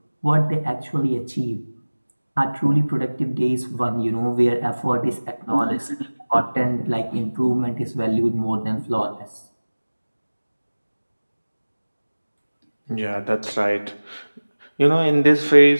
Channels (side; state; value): both; inverted; correlation -1.00